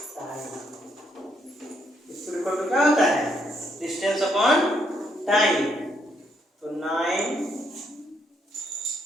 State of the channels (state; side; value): normal; both; correlation 0.74